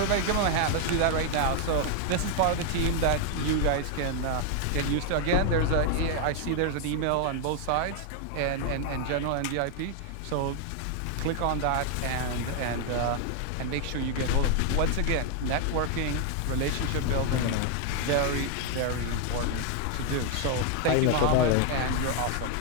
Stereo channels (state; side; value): different; both; correlation 0.00